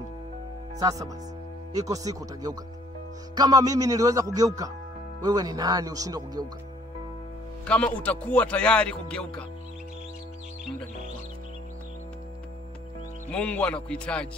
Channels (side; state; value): both; normal; correlation 0.60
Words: Sasa basi, iko siku utageuka. Kama mimi niliweza kugeuka, wewe ni nani ushindwe kugeuka? Kama utakuwa tayari kugeuka, muda ni wako. Mungu